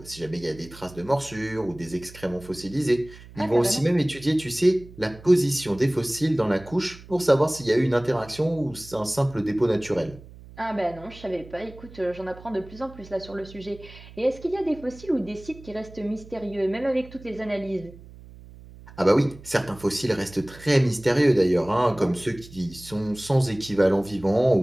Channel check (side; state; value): right; noise; hum, 19 dB below the sound